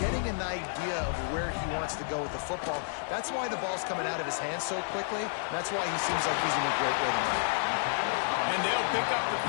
an idea of where he wants to go with the football. That's why the ball's coming out of his hands so quickly. That's why he seems like he's in a great rhythm. And they'll pick up the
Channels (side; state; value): right; silent; 57 dB below the other